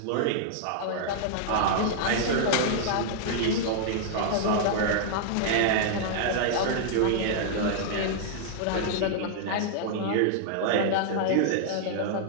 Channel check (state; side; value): different; both; correlation -0.01